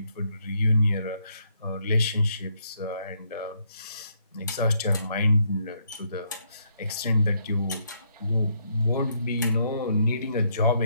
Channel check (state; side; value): inverted; both; correlation -0.74